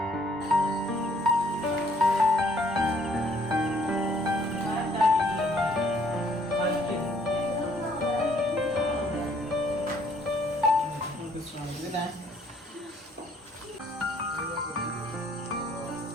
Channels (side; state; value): both; normal; correlation 0.63